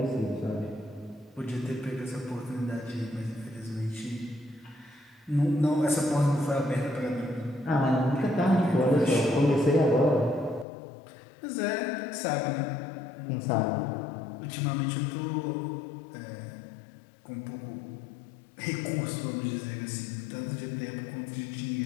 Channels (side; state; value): right; drops out; at 10.7 s